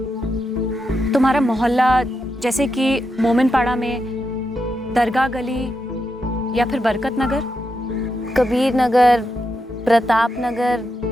तुम्हारा मोहल्ला जैसे कि मोमिनपाड़ा में, दरगाह गली या फिर बरकत नगर, कबीर नगर, प्रताप नगर?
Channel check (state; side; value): normal; both; correlation 0.85